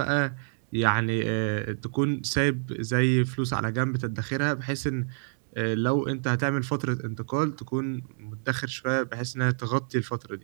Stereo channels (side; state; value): left; silent; digital silence